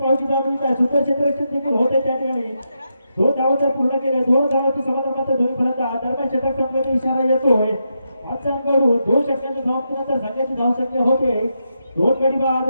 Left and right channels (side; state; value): both; inverted; correlation -0.84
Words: धाव मिळत आहे. सुंदर क्षेत्ररक्षण देखील होते त्या ठिकाणी. दोन धावा तर पूर्ण केले. दोन धावांची समाधान मात्र दोन्ही फलंदाज. दरम्यान षटक संपण्याचा इशारा येतोय. आजच्याकडून दोन षटकांच्या समाप्तीनंतर संघाची धावसंख्या होते दोन गडी बाद